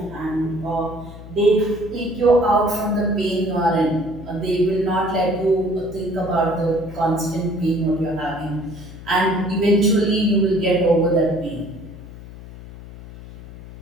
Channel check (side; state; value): left; noise; hum, 15 dB below the sound